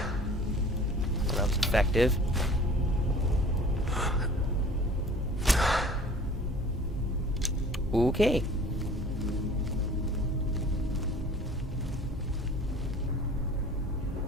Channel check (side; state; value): both; normal; correlation 0.46